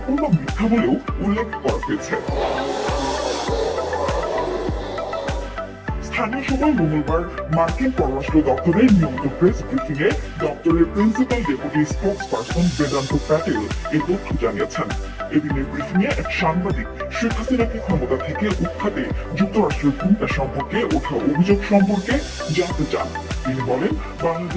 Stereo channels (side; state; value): both; identical; correlation 1.00